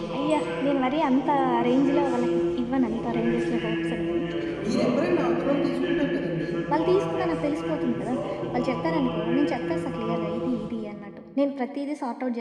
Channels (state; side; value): identical; both; correlation 1.00